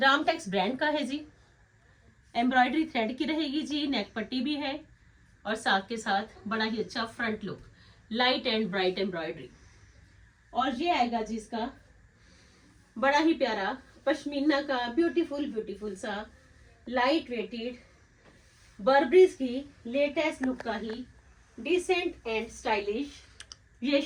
ब्रांड का है जी। एम्ब्रॉयडरी थ्रेड की रहेगी जी, नेक पट्टी भी है, और साथ के साथ बड़ा ही अच्छा front look, light and bright embroidery. और ये आएगा जी इसका बड़ा ही प्यारा पश्मीना का ब्यूटीफुल सा लाइट वेटेड बर्बरीज की लेटेस्ट लुक का ही डिसेंट एंड स्टाइलिश ये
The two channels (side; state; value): both; identical; correlation 1.00